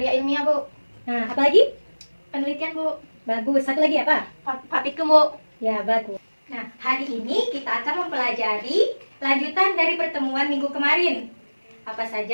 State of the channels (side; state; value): both; inverted; correlation -1.00